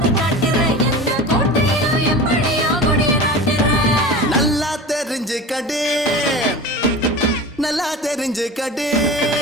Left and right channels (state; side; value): normal; both; correlation 0.33